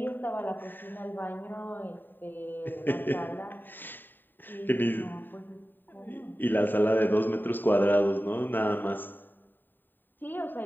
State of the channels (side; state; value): right; late; 0.092 ms